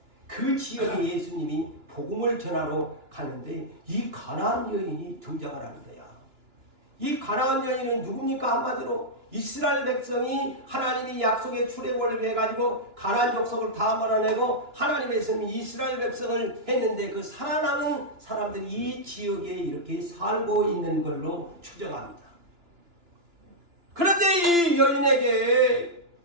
그 지역에 예수님이 복음을 전하러 가는데 이 가나안 여인이 등장을 하는 거야. 이 가나안 여인은 누굽니까? 한마디로 이스라엘 백성이 하나님이 약속의 출애굽을 해가지고 가나안 족속을 다 몰아내고 하나님의 성이 이스라엘 백성을 했는데 그 살아남은 사람들이 이 지역에 이렇게 살고 있는 걸로 추정합니다. 그런데 이 여인에게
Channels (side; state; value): left; late; 2.9 ms